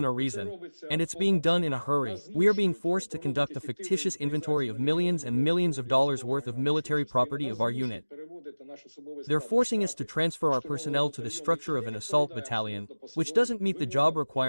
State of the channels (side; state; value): both; inverted; correlation -1.00